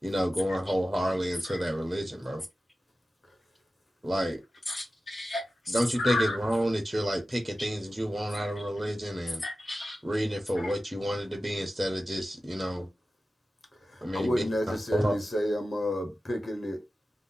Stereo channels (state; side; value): normal; both; correlation 0.94